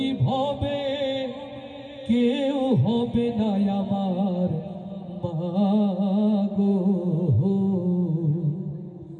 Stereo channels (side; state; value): both; identical; correlation 1.00